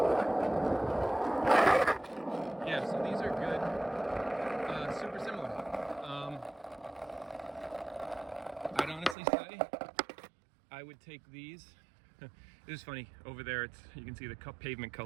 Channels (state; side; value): drops out; left; at 9.2 s